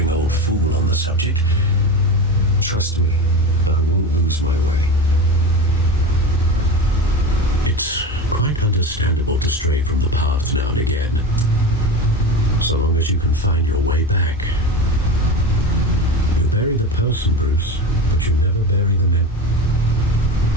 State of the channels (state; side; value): normal; both; correlation 0.25